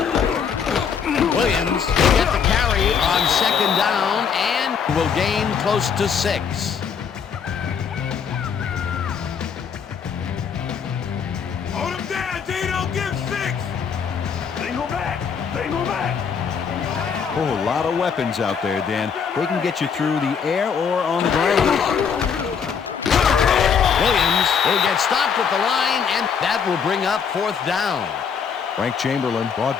Williams will get the carry on second down and will gain close to 6. Hold him down, Dino. Give 6. Single back. Oh, a lot of weapons out there, Dan. They can get you through the air or on the ground. Williams will get stopped at the line, and that will bring up 4th down. Frank Chamberlain brought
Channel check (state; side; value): quieter; right; 6.8 dB